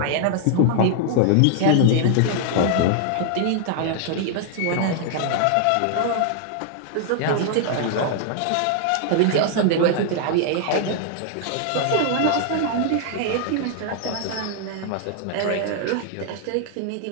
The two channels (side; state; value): both; different; correlation -0.01